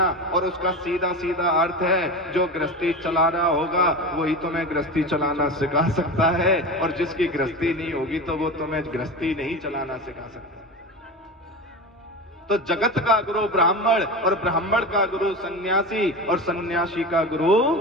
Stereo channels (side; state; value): both; normal; correlation 0.26